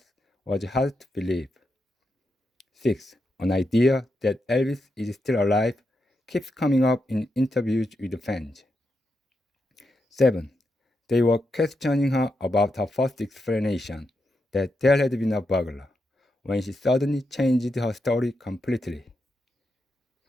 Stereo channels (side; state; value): both; normal; correlation 0.85